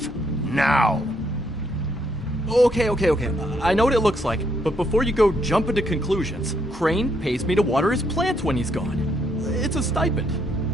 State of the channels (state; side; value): normal; both; correlation 0.73